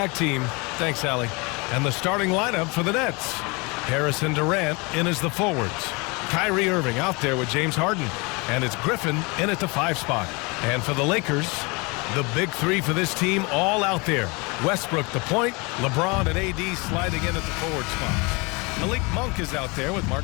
team. Thanks, Allie. And the starting lineup for the Nets. Harrison Durant in as the forwards. Kyrie Irving out there with James Harden. And it's Griffin in at the 5 spot. And for the Lakers, the big three for this team all out there. Westbrook the point, LeBron and AD sliding in at the forward spot. Malik Monk is out there with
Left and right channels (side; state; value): right; quieter; 28.0 dB